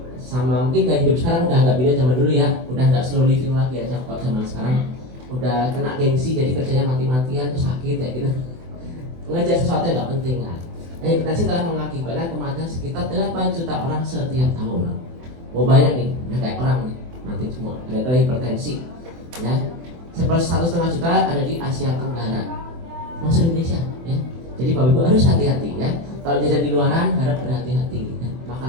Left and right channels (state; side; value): late; left; 24 ms